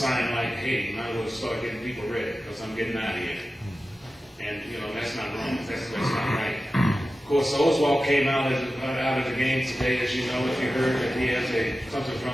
like, hey, you might as well start getting people ready because I'm getting out of here. And, that's not wrong. That's not right. Of course, Oswald came out of the game today, as you know, if you heard that he has something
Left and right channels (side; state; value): both; normal; correlation 0.94